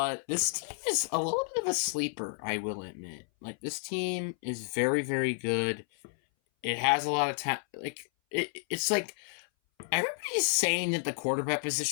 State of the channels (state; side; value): silent; right; 57 dB below the other